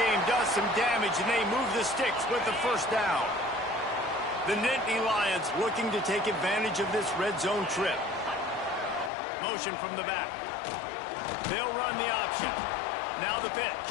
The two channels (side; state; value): right; drops out; at 9.1 s